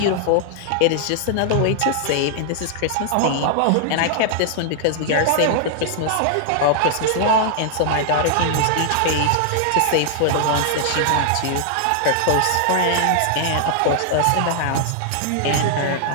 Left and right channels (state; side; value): different; both; correlation -0.01